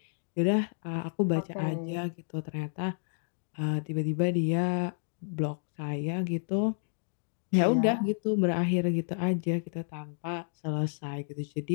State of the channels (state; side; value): silent; right; digital silence